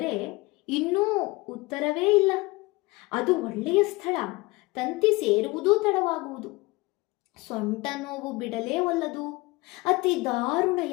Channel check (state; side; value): quieter; right; 22.9 dB